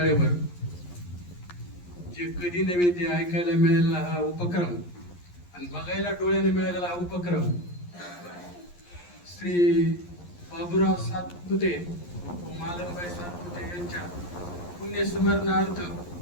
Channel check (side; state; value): right; late; 11 ms